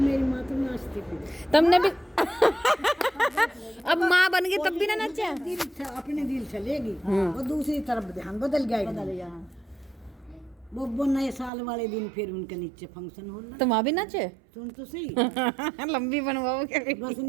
माँ तो नाचती थी। तुमने भी अब माँ बन गई तब भी ना नाचा। अपने दिल चलेगी और दूसरी तरफ ध्यान बदल गया। वो नए साल वाले दिन फिर उनके नीचे फंक्शन हो रहा। तो माँ भी नाचे। सुन तो सही लंबी बनवाओ क्या? बस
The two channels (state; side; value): drops out; left; at 11.5 s